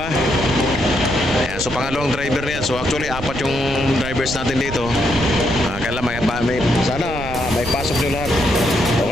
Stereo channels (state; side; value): noise; right; rumble, 10 dB below the sound